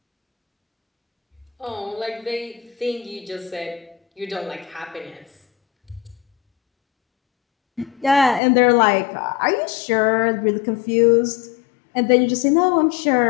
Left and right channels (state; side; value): drops out; right; at 8.4 s